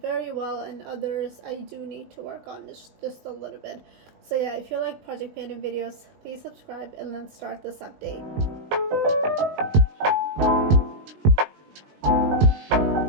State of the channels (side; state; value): left; late; 20 ms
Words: very well and others I do need to work on just a little bit. So yeah, if you like project panning videos, please subscribe and let's start this update.